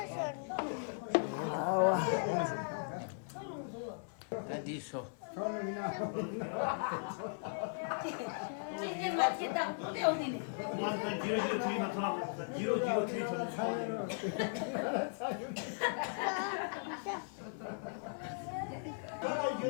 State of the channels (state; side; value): silent; right; digital silence